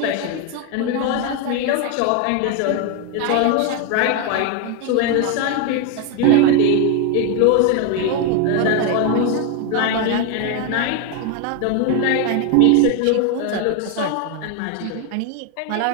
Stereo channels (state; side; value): different; both; correlation 0.01